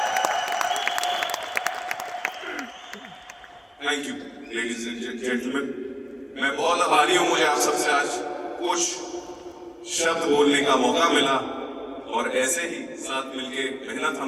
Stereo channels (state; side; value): identical; both; correlation 1.00